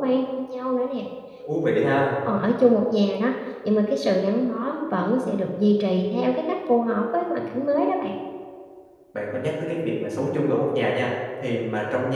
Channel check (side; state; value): both; identical; correlation 1.00